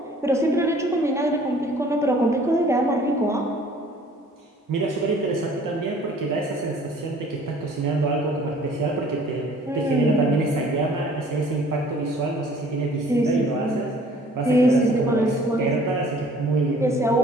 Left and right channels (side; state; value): both; normal; correlation 0.53